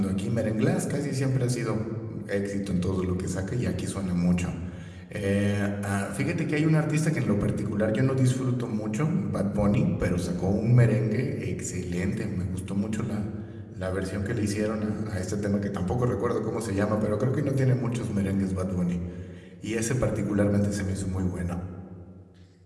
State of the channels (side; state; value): both; identical; correlation 1.00